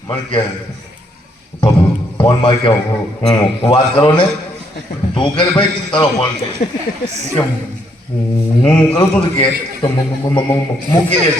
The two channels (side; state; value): both; normal; correlation 0.72